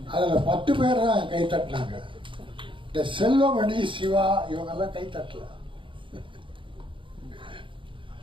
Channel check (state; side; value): late; left; 0.24 ms